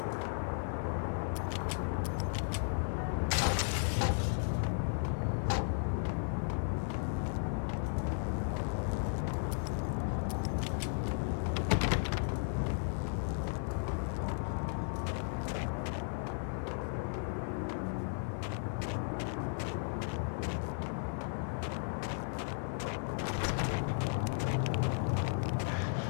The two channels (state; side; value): silent; right; digital silence